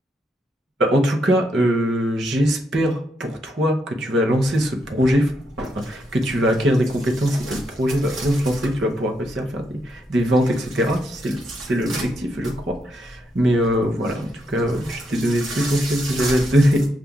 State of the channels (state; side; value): normal; both; correlation 0.79